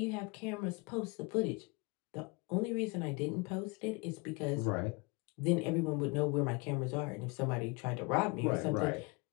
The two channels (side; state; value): right; quieter; 28.3 dB